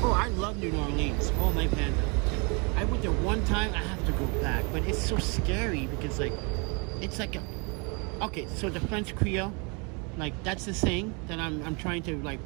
Oh, I love New Orleans. Oh, my panda. I went there one time. I have to go back, but it's so scary because, like, it's like a... Okay, so the French Creole, like, that's the thing that I'm trying to, like,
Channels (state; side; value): quieter; left; 32.4 dB